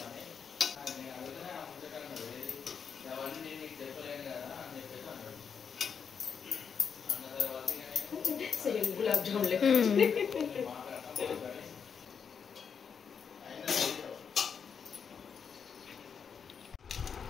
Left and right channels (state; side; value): quieter; right; 6.6 dB